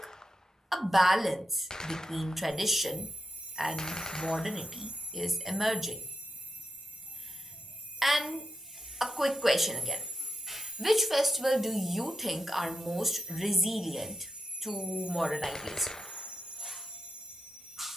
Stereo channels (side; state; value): both; normal; correlation 0.85